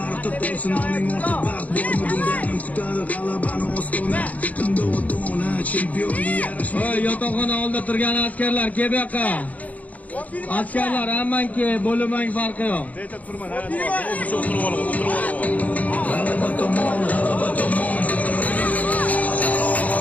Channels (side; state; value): right; late; 0.074 ms